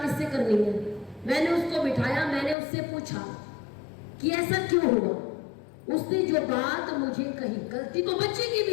किससे करनी है। मैंने उसको बिठाया, मैंने उससे पूछा कि ऐसा क्यों हुआ। उसने जो बात मुझे कही, गलती तो बच्चे की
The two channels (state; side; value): drops out; right; at 2.6 s